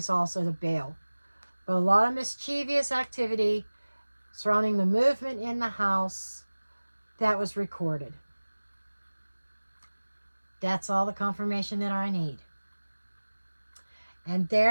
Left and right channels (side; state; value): both; inverted; correlation -1.00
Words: also to bail. But a lot of mischievous activity surrounding the movement in the house that was recorded. That's all the confirmation that I need. And